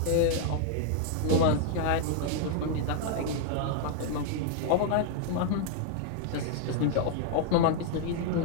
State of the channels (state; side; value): different; both; correlation 0.00